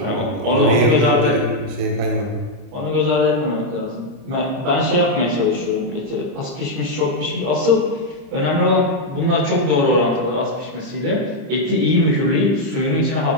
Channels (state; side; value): late; left; 30 ms